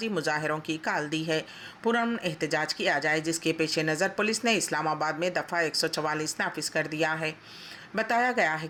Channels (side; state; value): both; identical; correlation 1.00